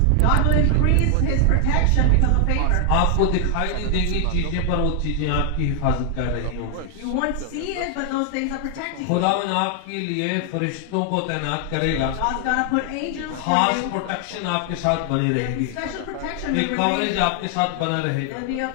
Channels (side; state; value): both; different; correlation 0.00